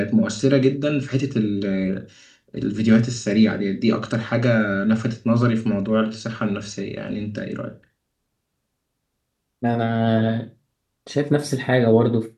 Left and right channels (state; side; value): identical; both; correlation 1.00